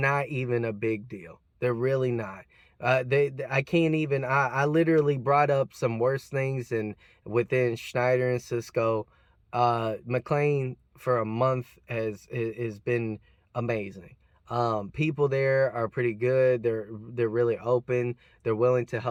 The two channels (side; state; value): both; identical; correlation 1.00